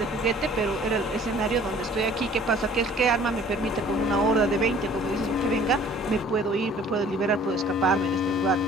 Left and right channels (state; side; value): normal; both; correlation 0.52